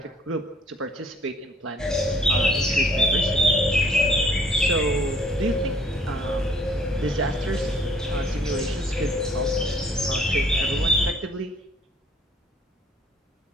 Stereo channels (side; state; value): both; normal; correlation 0.59